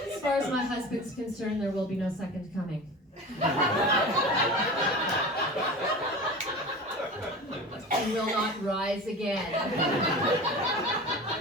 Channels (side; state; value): both; normal; correlation 0.33